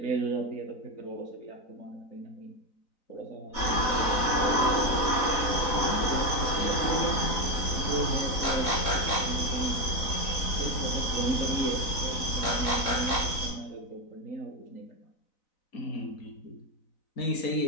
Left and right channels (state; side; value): late; right; 4.0 ms